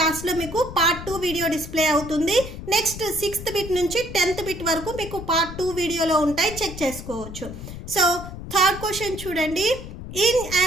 లాస్ట్లో మీకు పార్ట్ 2 వీడియో డిస్ప్లే అవుతుంది. నెక్స్ట్ 6th బిట్ నుంచి 10th బిట్ వరకు మీకు పార్ట్ 2 వీడియోలో ఉంటాయి, చెక్ చేసుకోవచ్చు. సో థర్డ్ క్వశ్చన్ చూడండి. In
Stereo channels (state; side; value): noise; left; rumble, 11 dB below the sound